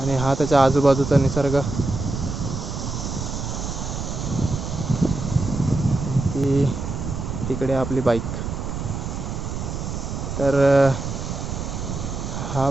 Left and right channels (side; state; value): right; noise; rumble, 5 dB below the sound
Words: हा त्याच्या आजूबाजूचा निसर्ग, की तिकडे आपली बाईक. तर हा